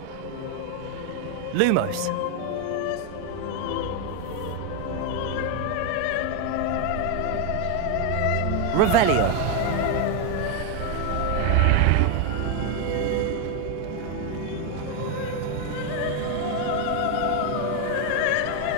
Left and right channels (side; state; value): both; different; correlation 0.01